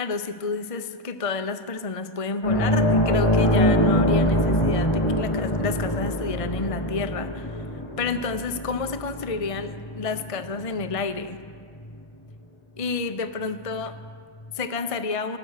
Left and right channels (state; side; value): late; right; 1.5 ms